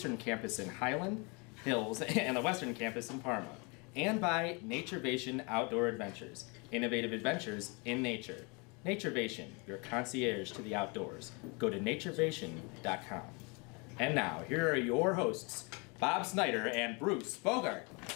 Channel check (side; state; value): right; quieter; 30.9 dB